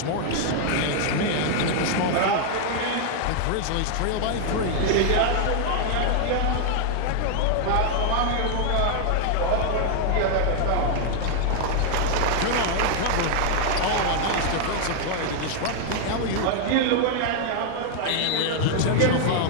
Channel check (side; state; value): both; different; correlation 0.00